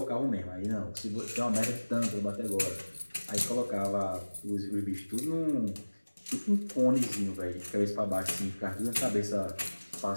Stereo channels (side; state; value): both; inverted; correlation -1.00